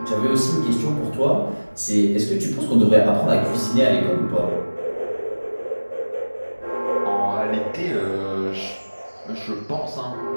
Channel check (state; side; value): inverted; both; correlation -1.00